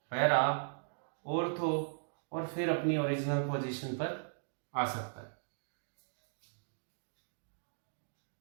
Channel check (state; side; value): silent; left; digital silence